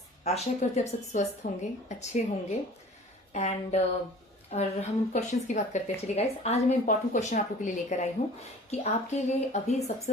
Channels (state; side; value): normal; both; correlation 0.46